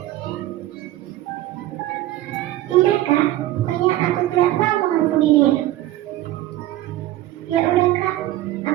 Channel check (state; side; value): quieter; left; 15.1 dB